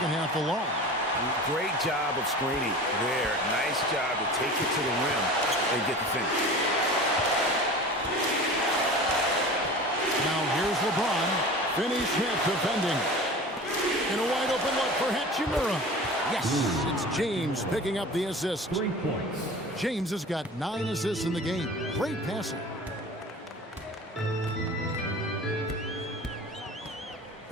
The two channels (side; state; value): both; normal; correlation 0.37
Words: half alone. Great job of screening there. Nice job to take it to the rim and get the finish. Now here's LeBron. Finney Smith defending. And a wide open look for Hachimura. Yes, it's James picking up the assist. 3 points. James has got 9 assists in the game. Great passing.